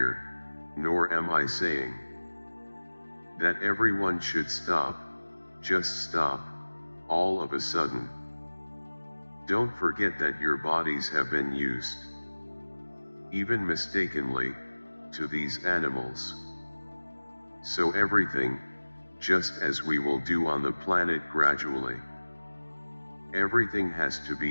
nor am I saying, that everyone should stop, just stop, all of a sudden. Don't forget that your bodies have been used, even mistakenly, to these animals. So everything, just as we will do on the planet gradually, everything has to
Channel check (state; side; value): inverted; both; correlation -1.00